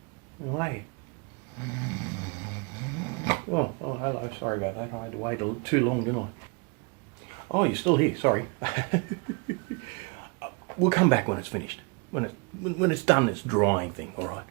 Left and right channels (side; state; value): left; quieter; 31.4 dB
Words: And wait. Oh, hello. Sorry about that. I had to wait too long, didn't I? Oh, you're still here. Sorry. We'll come back when it's finished. When it's done, this drying thing. All right.